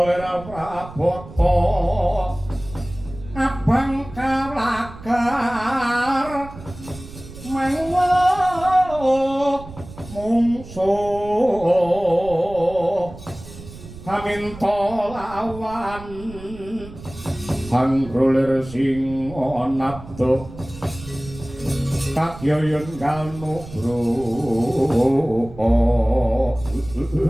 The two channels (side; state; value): right; noise; rumble, 15 dB below the sound